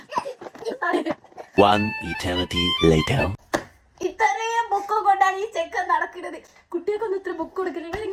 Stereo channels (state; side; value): identical; both; correlation 1.00